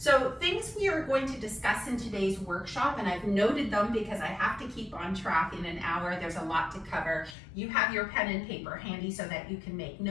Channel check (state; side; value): drops out; right; at 7.4 s